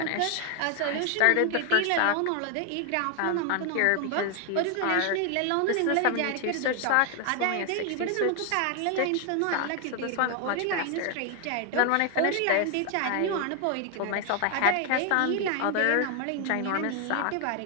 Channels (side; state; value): both; different; correlation 0.00